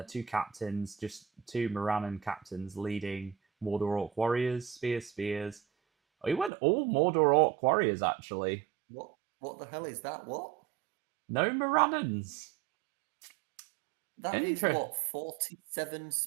2 captains, just 2 Morannon captains leading Mordor Orc warriors, spears. Oh, he went all Mordor Orc warriors actually. What? What the hell is that? What? No Morannons. That is Inter- what? 47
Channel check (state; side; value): drops out; left; at 6.5 s